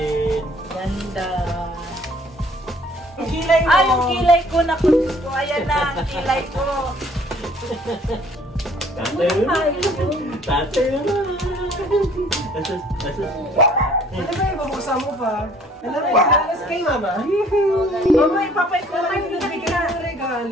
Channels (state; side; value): normal; both; correlation 0.57